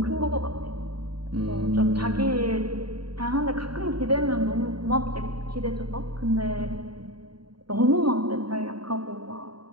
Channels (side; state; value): left; late; 0.72 ms